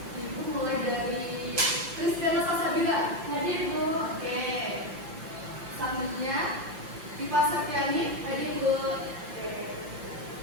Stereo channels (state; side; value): late; left; 5.9 ms